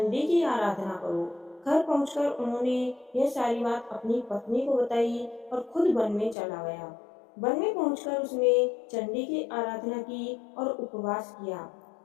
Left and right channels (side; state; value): right; drops out; at 6.4 s